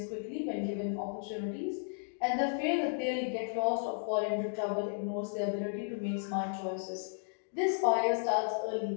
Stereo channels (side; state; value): right; silent; digital silence